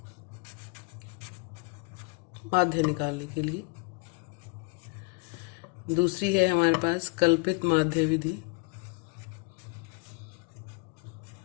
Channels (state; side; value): quieter; right; 29.8 dB